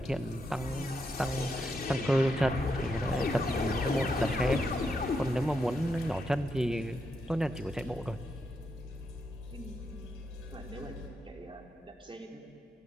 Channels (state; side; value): normal; both; correlation 0.82